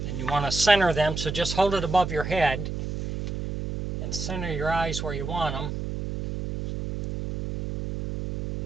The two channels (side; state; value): right; noise; hum, 4 dB below the sound